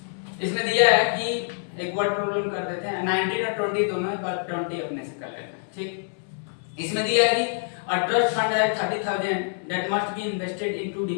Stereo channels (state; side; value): silent; right; 61 dB below the other